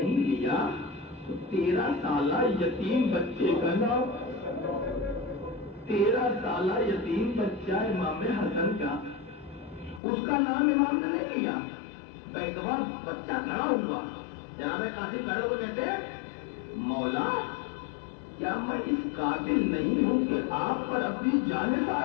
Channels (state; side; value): drops out; right; at 10.0 s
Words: لیا تو 13 سالہ یتیم بچے کا نام، 13 سالہ یتیم بچہ امام حسن کا، اس کا نام امام نے نہیں لیا۔ ایک دفعہ بچہ کھڑا ہوا، جناب قاسم کھڑے ہوئے کہتے ہیں مولا کیا میں اس قابل نہیں ہوں کہ آپ پر اپنی جان